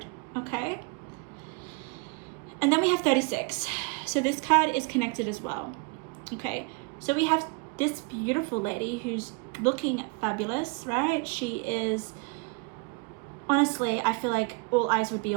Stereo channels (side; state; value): left; quieter; 29.8 dB